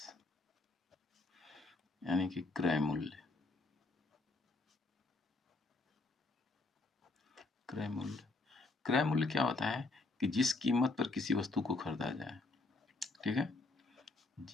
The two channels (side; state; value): right; quieter; 3.3 dB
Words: यानी कि क्रय मूल्य। क्रय मूल्य क्या होता है कि जिस कीमत पर किसी वस्तु को खरीदा जाए, ठीक है,